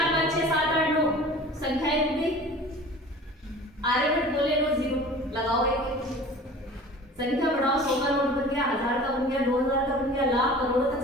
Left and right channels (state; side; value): normal; both; correlation 0.42